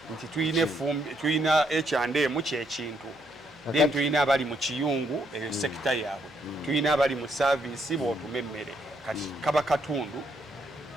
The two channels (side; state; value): right; noise; hum, 29 dB below the sound